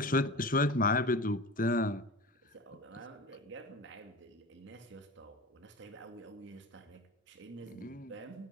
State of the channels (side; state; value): both; normal; correlation 0.32